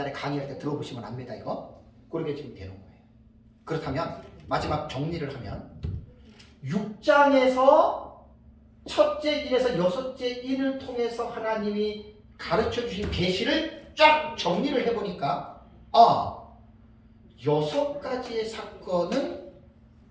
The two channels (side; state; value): both; identical; correlation 1.00